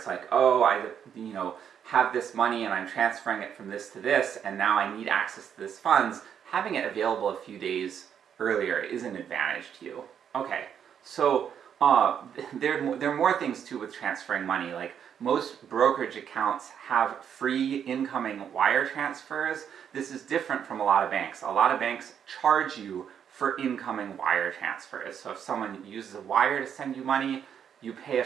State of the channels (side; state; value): left; quieter; 8.4 dB